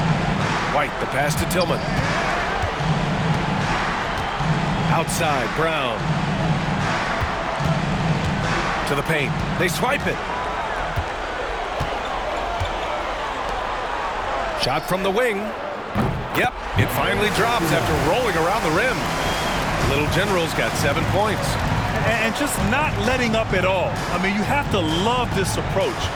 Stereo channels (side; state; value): both; identical; correlation 1.00